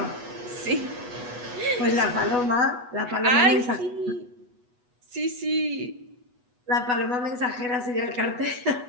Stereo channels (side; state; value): left; late; 8.1 ms